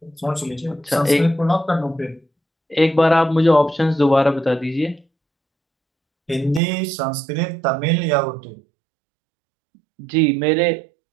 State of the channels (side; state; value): left; drops out; at 6.6 s